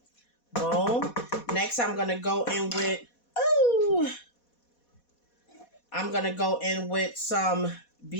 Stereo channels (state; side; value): late; right; 4.2 ms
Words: Boom. Next, I'm going to go in with, I'm going to go in with some